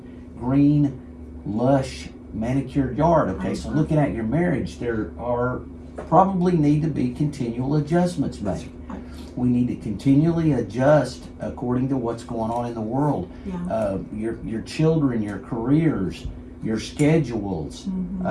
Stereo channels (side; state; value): both; identical; correlation 1.00